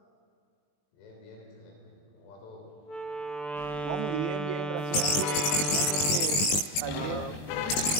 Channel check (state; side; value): late; right; 20 ms